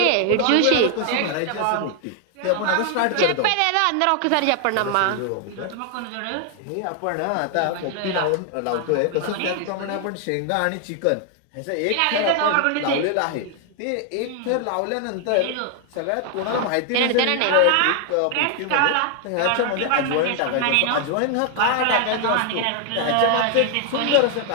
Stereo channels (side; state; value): both; different; correlation 0.00